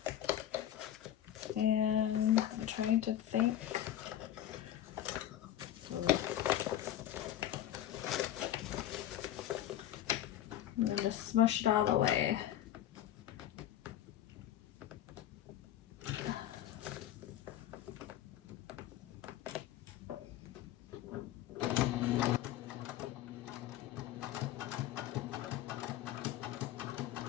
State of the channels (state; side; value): quieter; right; 12.1 dB